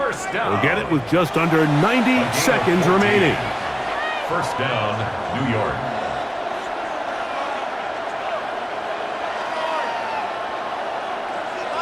They'll get it with just under 90 seconds remaining. First down, New York.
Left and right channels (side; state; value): both; identical; correlation 1.00